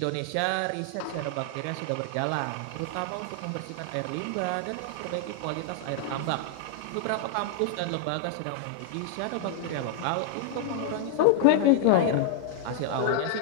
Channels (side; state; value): both; different; correlation 0.00